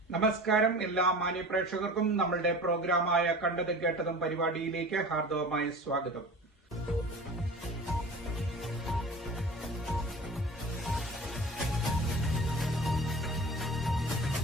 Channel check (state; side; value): normal; both; correlation 0.38